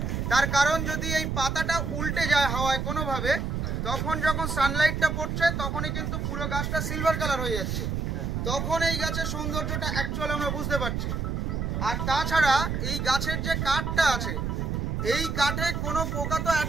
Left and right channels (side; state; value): right; noise; rumble, 1 dB below the sound